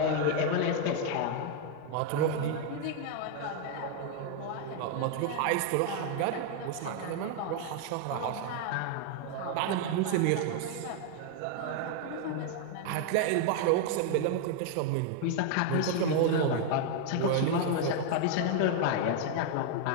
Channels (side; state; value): both; different; correlation 0.00